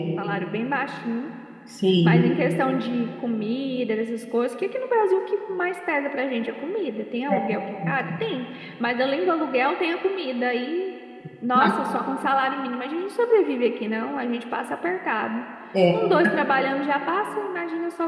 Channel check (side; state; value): both; identical; correlation 1.00